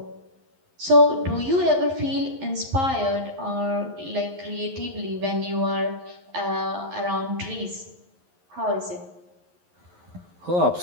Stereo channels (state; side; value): late; left; 11 ms